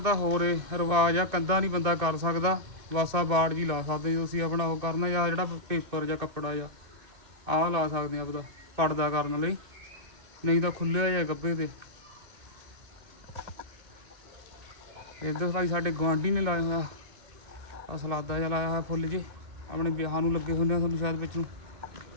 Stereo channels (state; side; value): late; left; 2.6 ms